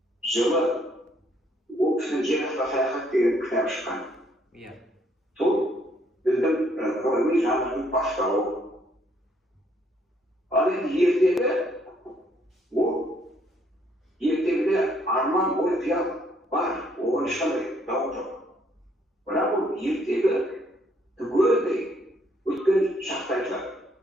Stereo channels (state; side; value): normal; both; correlation 0.68